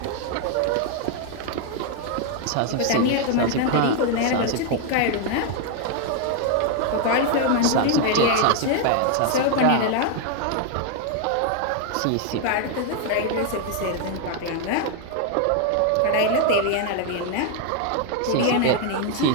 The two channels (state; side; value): different; both; correlation 0.01